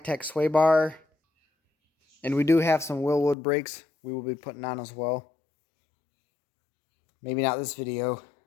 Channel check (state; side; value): drops out; right; at 3.4 s